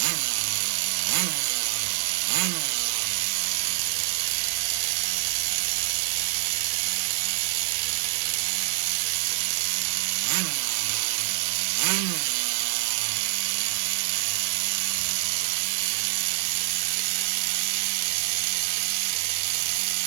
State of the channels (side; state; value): left; silent; digital silence